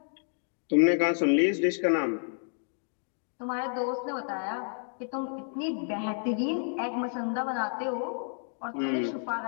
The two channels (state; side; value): silent; right; 58 dB below the other